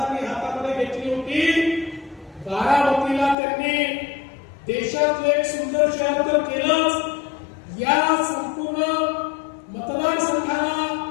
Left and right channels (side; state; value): right; drops out; at 3.4 s